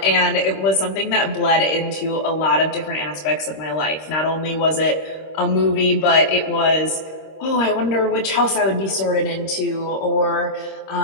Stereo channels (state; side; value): late; right; 26 ms